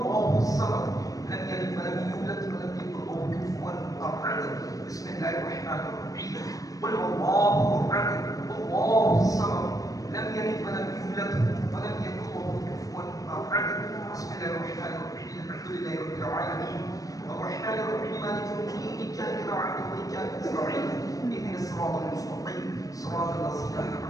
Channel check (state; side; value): late; right; 0.17 ms